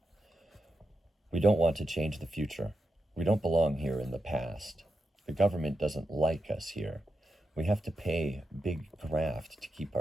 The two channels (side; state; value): both; normal; correlation 0.88